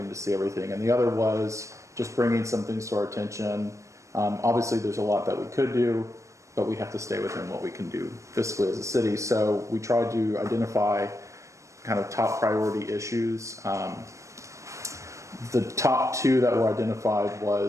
to see everything. And the other was just bringing some things to our attention. Obviously, there's a lot that we could do, but we have to stay within what we can do fiscally as a city. So we tried to identify kind of top priority issues. The top two that were identified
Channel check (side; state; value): left; late; 0.15 ms